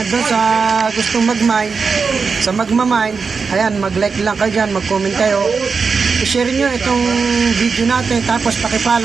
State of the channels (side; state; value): left; quieter; 5.1 dB